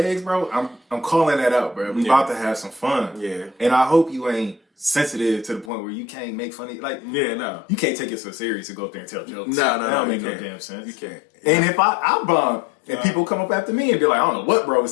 bro, I'm calling that out, bro. We about to have some fun. Yeah. And I hope you ain't sensitive to the point where you can't make funny, like, no, you can't take it so serious to go up there and tell jokes. No, that don't make no damn sense. You can't. And if I bomb and people come up after me and be like, I don't know what bro was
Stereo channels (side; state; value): right; drops out; at 5.7 s